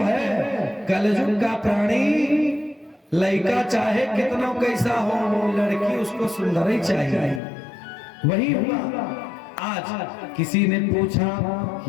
कलयुग का प्राणी। लड़का चाहे कितना कैसा हो, लड़की उसको सुंदर ही चाहिए। वही हुआ। आज किसी ने पूछा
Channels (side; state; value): right; drops out; at 7.4 s